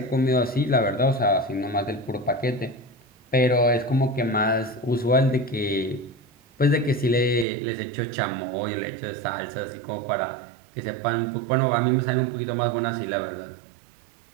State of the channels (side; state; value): left; drops out; at 7.5 s